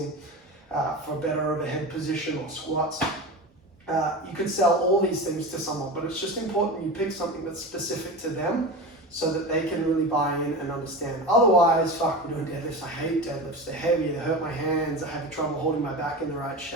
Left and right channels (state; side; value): normal; both; correlation 0.27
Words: for better overhead position or squats. You could sell all these things to someone, but it's just important you pick something that's specific to them so that they can really buy in and understand. Otherwise, fuck, we're doing deadlifts. I hate deadlifts. They're heavy, they hurt my hands, I have trouble holding my back in the right